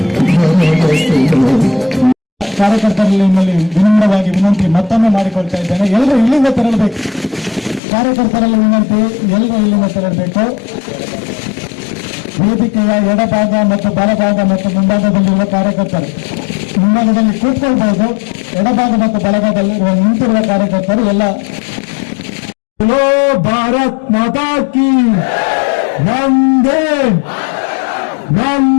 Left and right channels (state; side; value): drops out; right; at 7.8 s